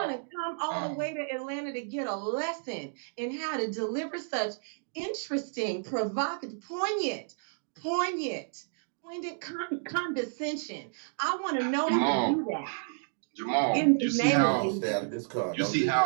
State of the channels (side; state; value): left; silent; digital silence